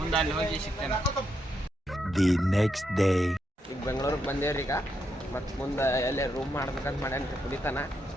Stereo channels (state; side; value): normal; both; correlation 0.81